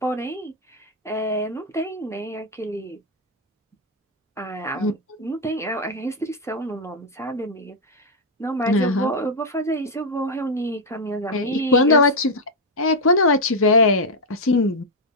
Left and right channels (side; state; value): both; normal; correlation 0.00